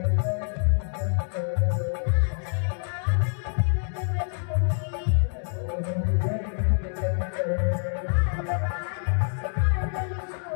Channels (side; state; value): right; silent; digital silence